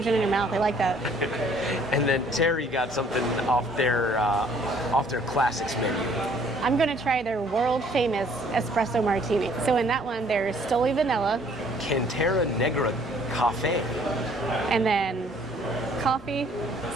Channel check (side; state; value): both; normal; correlation 0.60